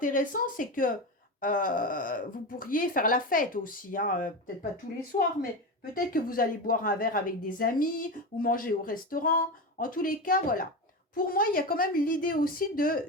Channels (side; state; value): both; normal; correlation 0.20